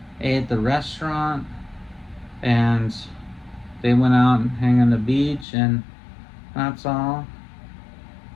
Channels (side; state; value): right; drops out; at 5.5 s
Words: ate at the restaurant, and they went out and hang on the beach, and that's all.